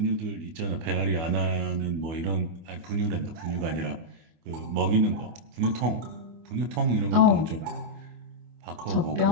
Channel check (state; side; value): late; left; 25 ms